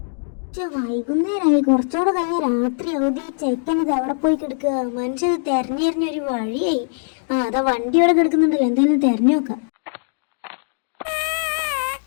വൈകുന്നേരമായി കുറച്ചുകൂടെ കഴിഞ്ഞ രാത്രി അവധി ചെക്കനത് അവിടെ പോയി കിടക്കുക. മനുഷ്യത് തെരഞ്ഞെറിഞ്ഞൊരു വഴിയായി. അതാ വണ്ടി അവിടെ കിടക്കുന്നുണ്ടല്ലോ, എന്തായാലും തെരഞ്ഞു നോക്കാം.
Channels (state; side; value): silent; right; digital silence